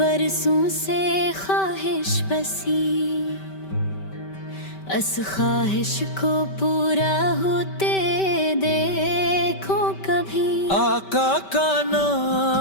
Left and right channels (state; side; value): late; right; 5.2 ms